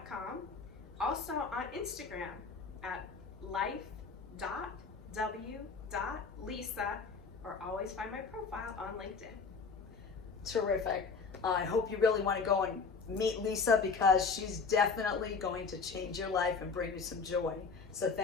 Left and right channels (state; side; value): quieter; right; 5.0 dB